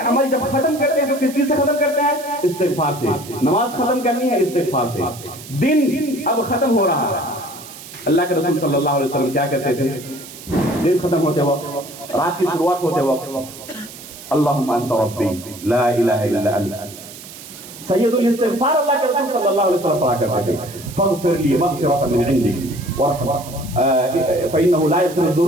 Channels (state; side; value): noise; right; hiss, 16 dB below the sound